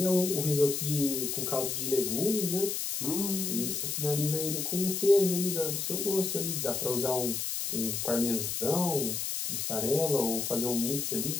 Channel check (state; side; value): noise; left; hiss, 2 dB below the sound